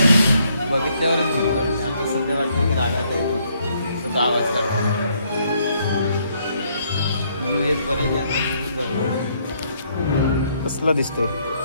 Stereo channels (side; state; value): both; inverted; correlation -0.70